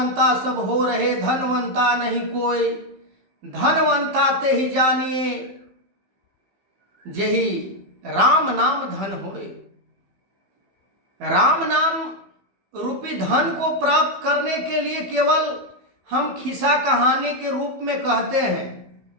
सब हो रहे, धनवंता नहीं कोई, धनवंता ते ही जानिए, जेहि राम नाम धन होए। राम नाम रूपी धन को प्राप्त करने के लिए केवल हम खिस्सा कहानी के रूप में कहते हैं,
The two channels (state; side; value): late; left; 15 ms